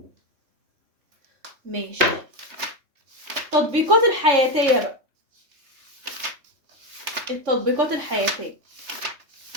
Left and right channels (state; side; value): late; left; 3.2 ms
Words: ماشي. التطبيقات الحياتية بقى. التطبيقات الحياتية